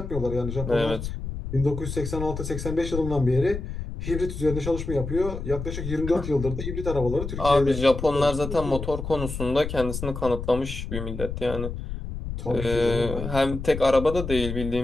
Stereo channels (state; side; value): noise; left; rumble, 6 dB below the sound